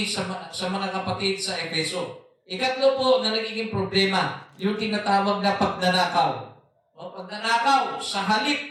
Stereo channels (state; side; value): identical; both; correlation 1.00